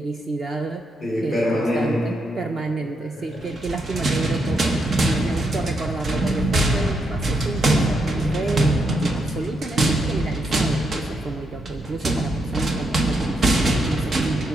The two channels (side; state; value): both; normal; correlation 0.80